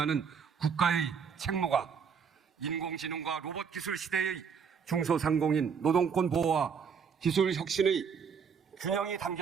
국가의 책무가 인공지능과 로봇 기술 시대의 중소상공인 노동권 보호와 기술 혁신의 균형이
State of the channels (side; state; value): left; quieter; 6.5 dB